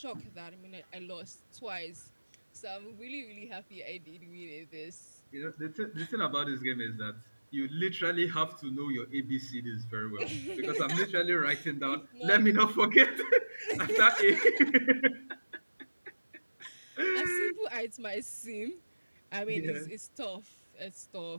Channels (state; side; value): inverted; both; correlation -1.00